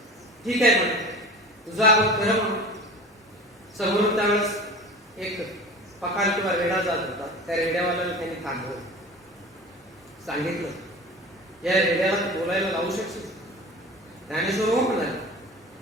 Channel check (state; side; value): normal; both; correlation 0.37